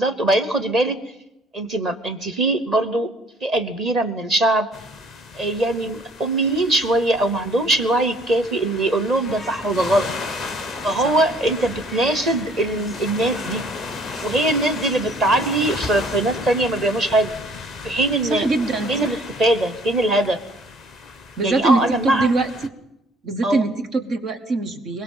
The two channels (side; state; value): both; normal; correlation 0.57